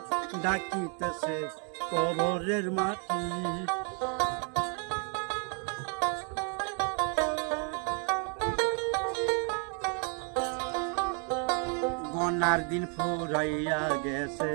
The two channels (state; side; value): quieter; left; 39.6 dB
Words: ডাকিতেছে কবরের মাটি। গনার দিন ফুরাইয়া গেছে